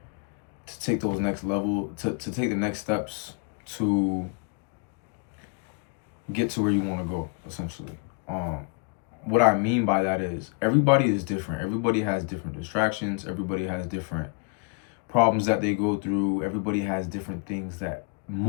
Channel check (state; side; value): quieter; right; 33.5 dB